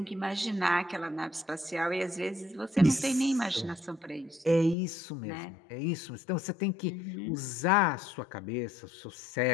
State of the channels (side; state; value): right; drops out; at 4.8 s